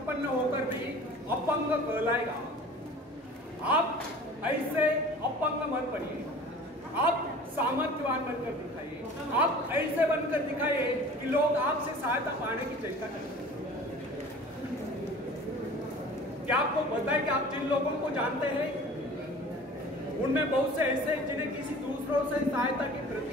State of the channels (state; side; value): normal; both; correlation 0.43